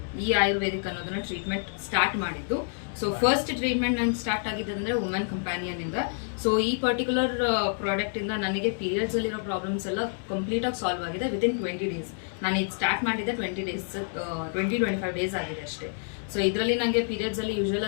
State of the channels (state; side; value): silent; right; digital silence